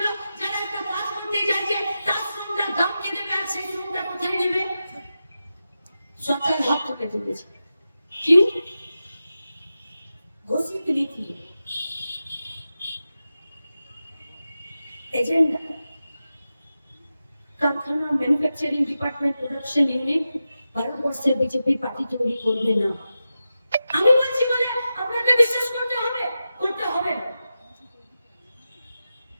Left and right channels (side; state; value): both; inverted; correlation -0.91